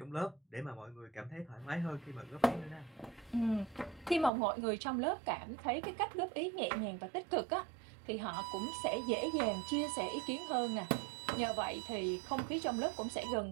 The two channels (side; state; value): left; drops out; at 4.3 s